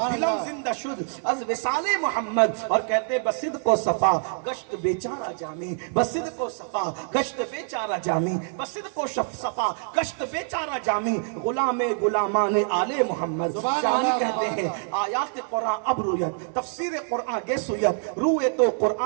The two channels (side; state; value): left; silent; 61 dB below the other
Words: دلم زندہ شد از وصال محمد۔ اور کہتے ہیں بصدق و صفا گشت بیچارہ جامی، بصدق و صفا گشت بیچارہ جامی، بصدق و صفا گشت بیچارہ جامی، غلام غلامان آل محمد۔ جامی کہتے ہیں آیات قرآن اب رویت، تفسیر قرآن گے سویت، روئے تو